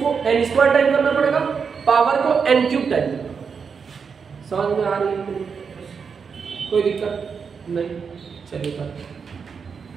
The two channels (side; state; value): left; quieter; 6.0 dB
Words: एन स्क्वायर टाइम करना पड़ेगा, पावर को एन क्यूब टाइम। समझ में आ रही है? कोई दिक्कत नहीं, चलिए।